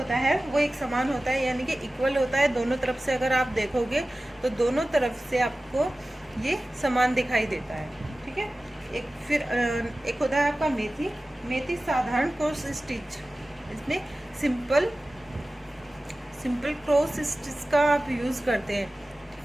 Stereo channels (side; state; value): both; normal; correlation 0.96